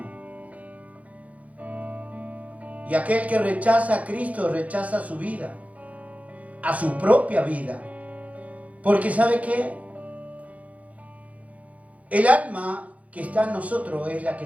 Y aquel que rechaza a Cristo, rechaza su vida, a su propia vida. Porque ¿sabe qué? El alma que está en nosotros es la que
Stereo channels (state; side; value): late; left; 0.068 ms